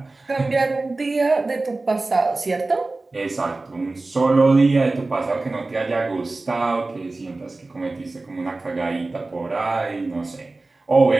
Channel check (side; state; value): left; quieter; 3.3 dB